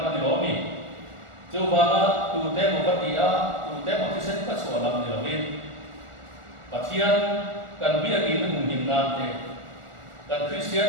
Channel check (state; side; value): late; left; 1.4 ms